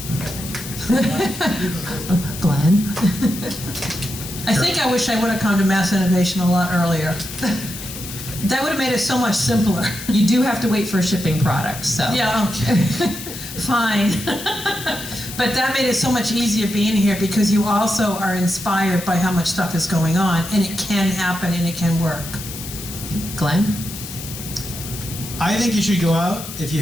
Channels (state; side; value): noise; left; hiss, 10 dB below the sound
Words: Glenn? I think I wish I would have come to Mass Innovation a lot earlier. That would have made it so much simpler. You do have to wait for a shipping product, so. Yeah, okay. Fine. But that made it so much easier being here because you also are inspired by how much stuff is going on, and it can happen and it can work. Glenn? I think you should go out, if you